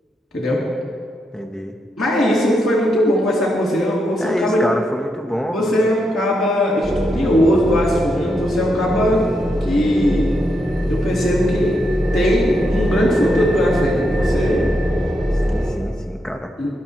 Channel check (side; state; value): both; normal; correlation 0.82